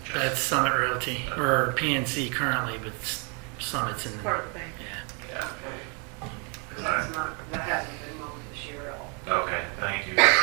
That's Summit Realty, or PNC currently, but Summit's in the... Part of the bank. Yeah. Yeah. That hasn't been mowed this year at all. Okay, thank you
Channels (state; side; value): quieter; left; 35.0 dB